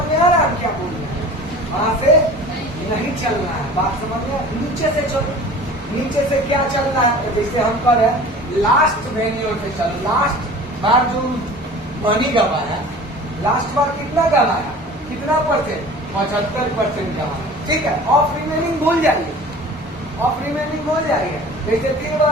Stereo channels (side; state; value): both; normal; correlation 0.42